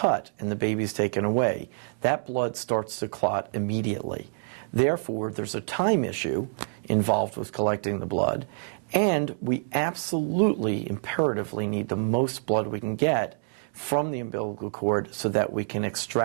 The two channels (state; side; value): silent; left; digital silence